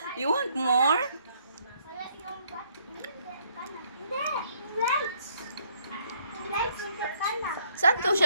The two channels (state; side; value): inverted; both; correlation -0.66